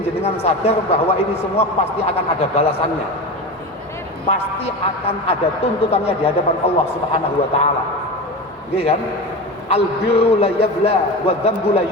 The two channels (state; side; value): normal; both; correlation 0.26